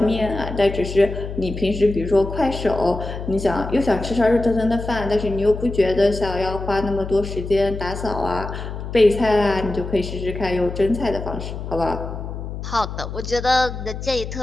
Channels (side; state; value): left; noise; hum, 8 dB below the sound